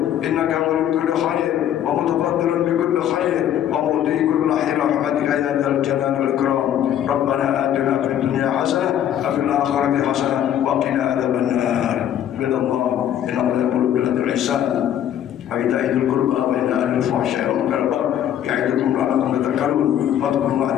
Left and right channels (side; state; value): right; quieter; 10.5 dB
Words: إنك ولي كل خير ومتفضل بكل خير ومؤتي كل خير رحمتك يا ذا الجلال والإكرام ربنا آتنا في الدنيا حسنة وفي الآخرة حسنة وقنا عذاب النار عباد الله إن الله يأمر بالعدل والإحسان وإيتاء ذي القربى وينهى عن الفحشاء والمنكر والبغي يعظكم لعلكم تذكرون فاذكروا الله